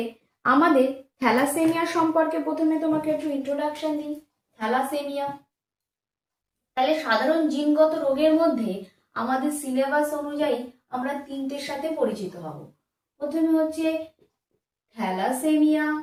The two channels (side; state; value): both; identical; correlation 1.00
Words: আমাদের থ্যালাসেমিয়া সম্পর্কে প্রথমে তোমাকে একটু ইন্ট্রোডাকশন দিই। থ্যালাসেমিয়া তাহলে সাধারণ জিনগত রোগের মধ্যে আমাদের সিলেবাস অনুযায়ী আমরা তিনটের সাথে পরিচিত হব। প্রথমে হচ্ছে থ্যালাসেমিয়া,